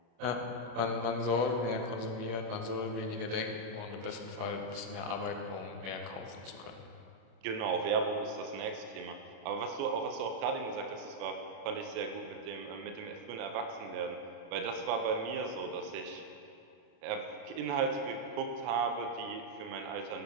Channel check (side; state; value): left; late; 36 ms